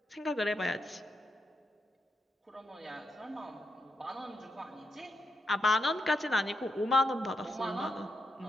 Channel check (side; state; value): both; normal; correlation 0.83